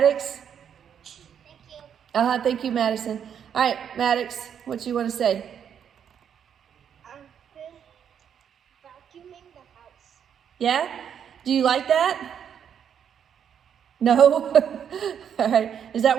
Thank you. Thank you, Madison. All right, Maddox, what do you want to say? I've been vacuuming the house. Yeah? Do you like that? No? All right. Is that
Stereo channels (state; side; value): quieter; left; 8.4 dB